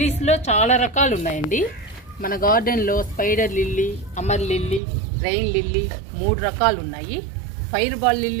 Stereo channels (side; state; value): left; drops out; at 4.8 s